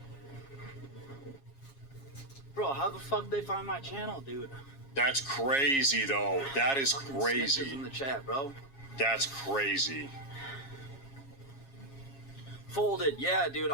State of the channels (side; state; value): right; late; 7.3 ms